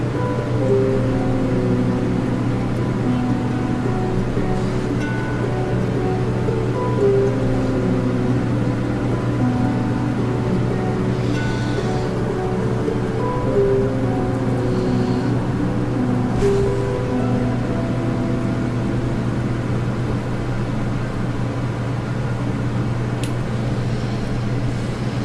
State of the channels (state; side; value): identical; both; correlation 1.00